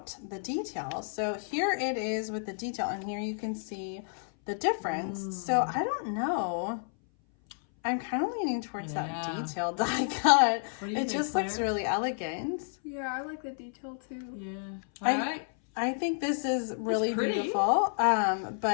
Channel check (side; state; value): right; silent; 57 dB below the other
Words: the detail. So here it is with the detail, and here you can see the difference. So I don't know. I'm kind of leaning towards that detail die cut. It just looks really elegant. Yeah, I like the detail too. Yeah. All right. I think this is really beautiful,